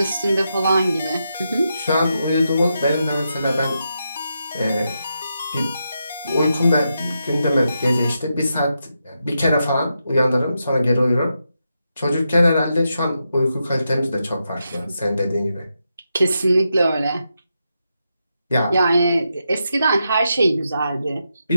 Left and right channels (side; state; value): both; inverted; correlation -0.85